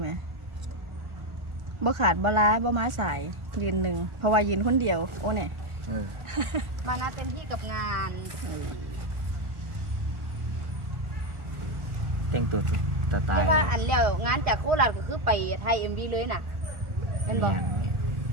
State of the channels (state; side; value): late; left; 1.4 ms